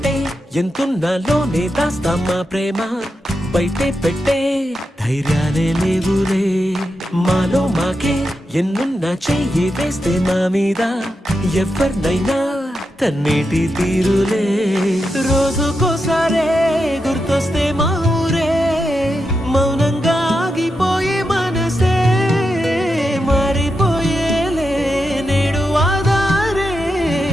ఎంతున్నాలోనే దాస్తామా ప్రేమ బయటే పెట్టే ధైర్యాలే లేవులే మాలో మాకే ఎన్నున్నా చెయ్యి వేస్తే మా మీద ఎవరినైనా తన్నేటి తీరులే రోజుకోసారే గుర్తొస్తే మా ఊరే మౌనంగా ఆగిపోయే మనసే మారిపోయేలే నేడు ఆధారే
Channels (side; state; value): both; normal; correlation 0.87